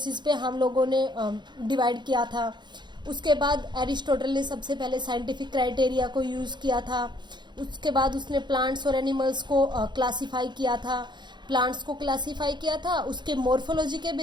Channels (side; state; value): left; late; 0.22 ms